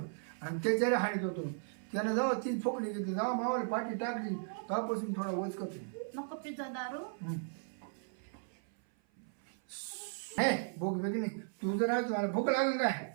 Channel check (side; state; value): left; silent; 54 dB below the other